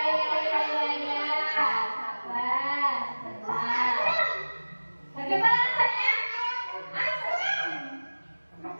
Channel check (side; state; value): both; inverted; correlation -1.00